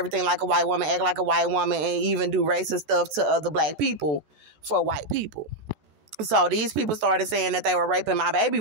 like a white woman, act like a white woman, and even do racist stuff to other black people for white people. So these people started saying that they were raping my baby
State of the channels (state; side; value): late; left; 13 ms